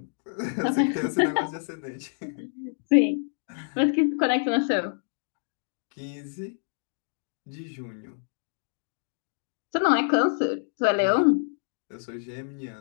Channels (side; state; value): right; silent; digital silence